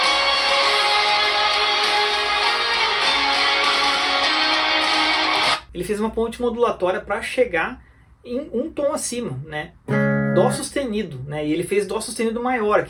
Ele fez uma ponte modulatória para chegar em um tom acima, né? Dó sustenido, né? E ele fez Dó sustenido maior,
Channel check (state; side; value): identical; both; correlation 1.00